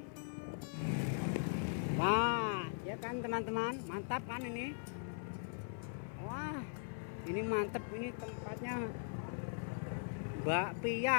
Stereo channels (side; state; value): right; silent; 51 dB below the other